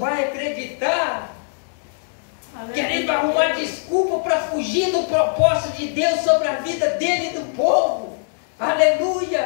acreditar. Querendo arrumar desculpa para fugir do propósito de Deus sobre a vida dele e do povo.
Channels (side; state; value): right; silent; digital silence